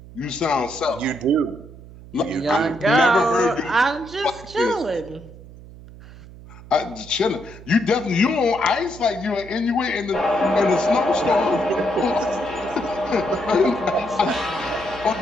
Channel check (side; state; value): right; noise; hum, 18 dB below the sound